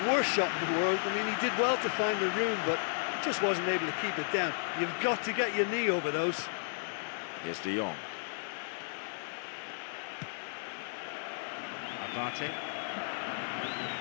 worst shot in the world. I mean, he did well to find the room, but just wasn't able to keep it down. You've got to get your knee over those. Here's De Jong. Abate.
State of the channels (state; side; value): silent; right; digital silence